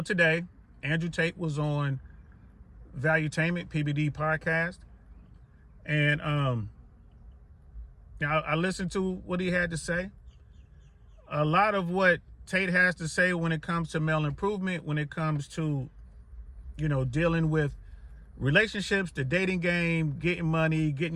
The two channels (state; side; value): identical; both; correlation 1.00